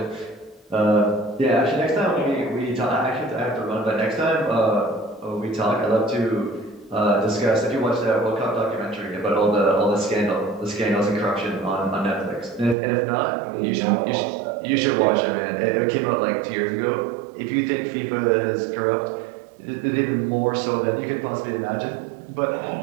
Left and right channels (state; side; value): drops out; left; at 12.8 s